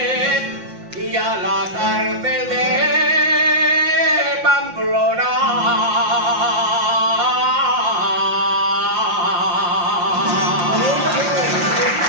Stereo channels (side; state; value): left; late; 5.7 ms